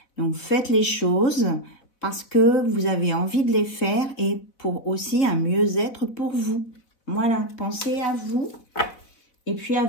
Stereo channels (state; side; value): late; right; 4.0 ms